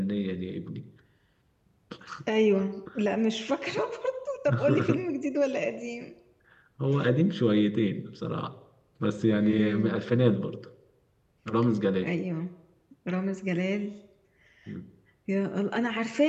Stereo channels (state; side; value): identical; both; correlation 1.00